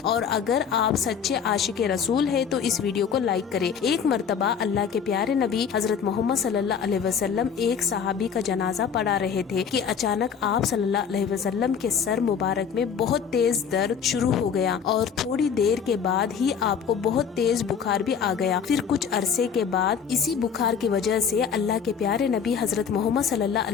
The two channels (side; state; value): right; quieter; 7.0 dB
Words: और अगर आप सच्चे आशिक रसूल है तो इस वीडियो को लाइक करें। एक मर्तबा अल्लाह के प्यारे नबी हजरत मोहम्मद सल्लल्लाहु अलैहि वसल्लम एक सहाबी का जनाजा पढ़ा रहे थे कि अचानक आप सल्लल्लाहु अलैहि वसल्लम के सर मुबारक में बहुत तेज दर्द शुरू हो गया और थोड़ी देर के बाद ही आपको बहुत तेज बुखार भी आ गया। फिर कुछ अरसे के बाद इसी बुखार की वजह से अल्लाह के प्यारे नबी हजरत मोहम्मद सल्लल्लाहु